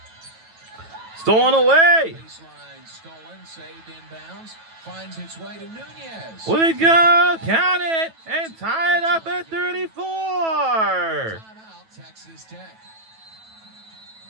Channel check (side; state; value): left; late; 9.2 ms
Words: Stolen away. Baseline stolen, saved inbounds. Finds its way to Nunez. Will it go? Count it and tie it up at 34. Timeout, Texas Tech.